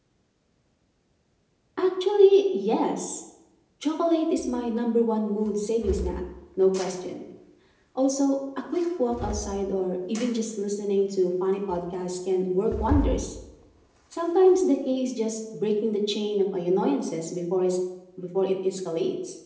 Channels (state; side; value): identical; both; correlation 1.00